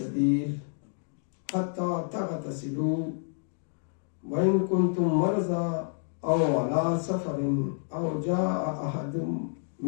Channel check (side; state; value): right; silent; digital silence